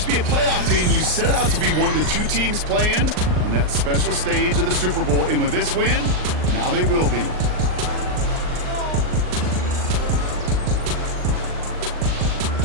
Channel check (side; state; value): left; late; 39 ms